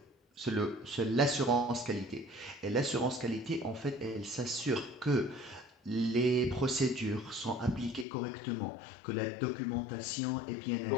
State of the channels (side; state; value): right; drops out; at 8.1 s